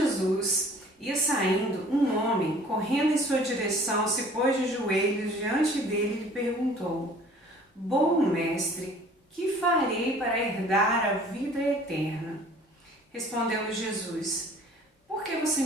Ia saindo, um homem, correndo em sua direção, se pôs de joelhos diante dele e lhe perguntou: Bom mestre, que farei para herdar a vida eterna? Respondeu-lhe Jesus: Por que você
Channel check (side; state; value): both; normal; correlation 0.51